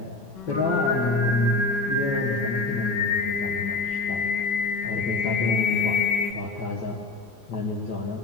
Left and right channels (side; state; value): right; quieter; 3.5 dB